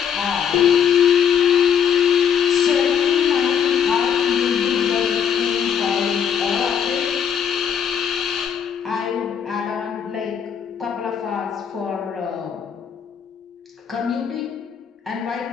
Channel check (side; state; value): right; quieter; 7.9 dB